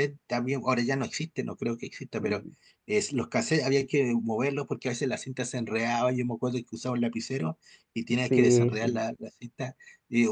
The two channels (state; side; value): identical; both; correlation 1.00